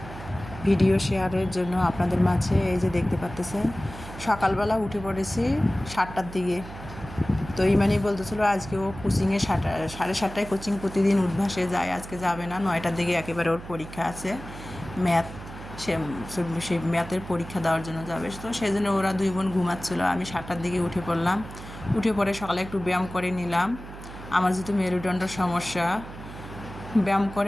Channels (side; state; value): right; noise; hum, 13 dB below the sound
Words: ভিডিও শেয়ারের জন্য আপনাদের মাঝে। এই যে দেখতে পাচ্তেছেন, সকালবেলা উঠে পড়েছি 7টার দিকে। তো ইমানি বলতেছিল আজকে ও কোচিংয়ে 7:30টায় কোচিং প্রতিদিন উদ্ভাসে যায়, আজকে যাবে না। 9টার দিকে একেবারে ওর পরীক্ষা আছে, ম্যাথ। সে সেই ম্যাথের পরীক্ষা দেওয়ার জন্য যাবে। তো সেই জন্য ওরা দুই বোন ঘুমাচ্ছিলো। আমি 7টার দিকে উঠে পড়লাম। উঠে পড়ে সকালে একটু ব্যায়াম করে নিলাম। আমার যেহেতু মেরুদণ্ডের সমস্যা, ব্যায়াম